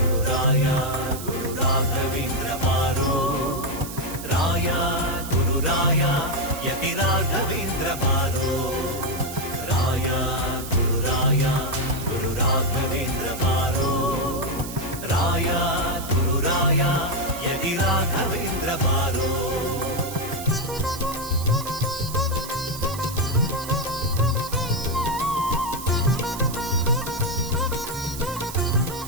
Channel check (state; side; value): noise; right; hiss, 11 dB below the sound